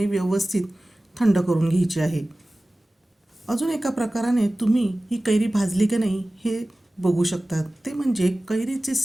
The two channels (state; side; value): normal; both; correlation 0.97